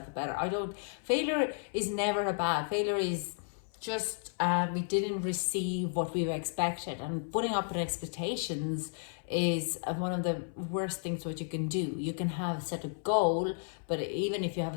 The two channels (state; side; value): silent; right; 56 dB below the other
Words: better. Failure is never a bad. Failure is just we didn't receive what we expected, and putting up with expectations is one of the worst things what you can do. You can have set a goal, but even if you have